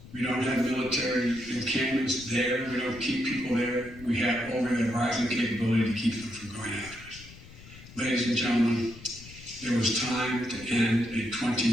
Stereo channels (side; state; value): left; noise; rumble, 18 dB below the sound